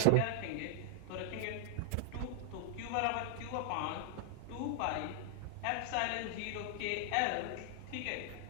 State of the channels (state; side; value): different; both; correlation 0.00